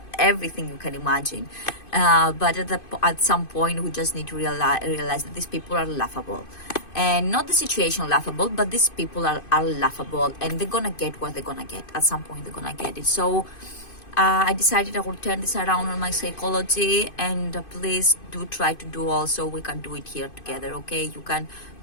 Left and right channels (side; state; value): right; late; 2.5 ms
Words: everything you can imagine. But at some point, we just need to realize that these people are laughable. And not the situation laughable, but these people are laughable, and they're gonna get what they're gonna get. At some point, they're gonna get it. So I decided I will turn this around on my psychology, and please do try to do also. We can do it here together, okay? You can